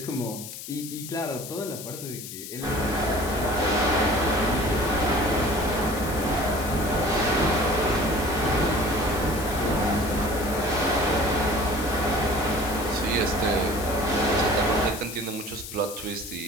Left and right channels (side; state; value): left; noise; hiss, 11 dB below the sound